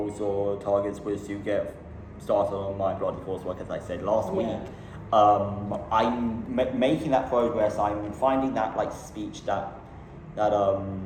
or targets was to get started on my bloody coursework, as I said last week. I'm making that progress. I'm finding that like speech that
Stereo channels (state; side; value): identical; both; correlation 1.00